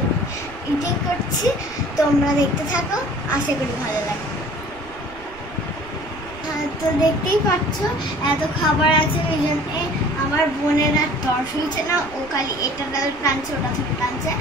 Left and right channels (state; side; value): noise; right; rumble, 19 dB below the sound